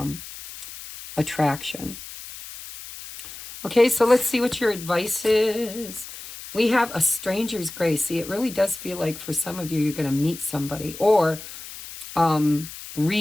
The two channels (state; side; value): noise; left; hiss, 13 dB below the sound